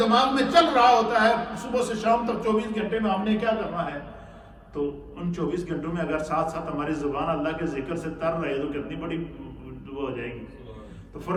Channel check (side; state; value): both; identical; correlation 1.00